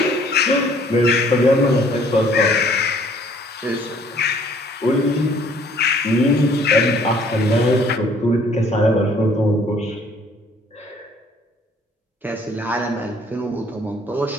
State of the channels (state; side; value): normal; both; correlation 0.59